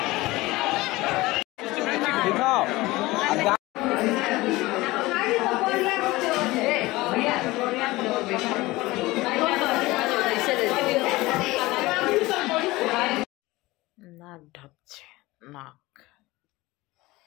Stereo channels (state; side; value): quieter; right; 20.0 dB